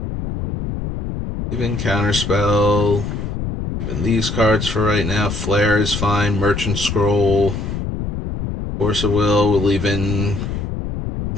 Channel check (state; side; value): noise; left; rumble, 4 dB below the sound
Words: Even Counterspell. Even these cards for right now. Flare is fine. Merchant Scroll. Force of Will. We'll leave in